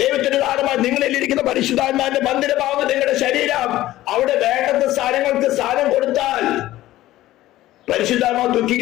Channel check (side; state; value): right; quieter; 15.4 dB